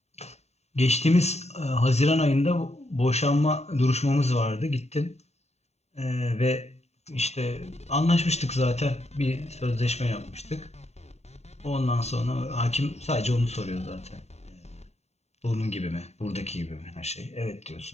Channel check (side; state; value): right; late; 0.32 ms